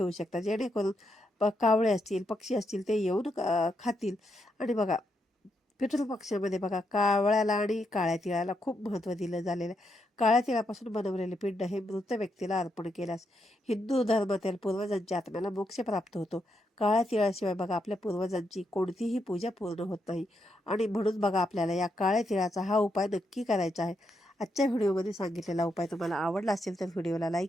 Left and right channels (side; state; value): both; normal; correlation 0.81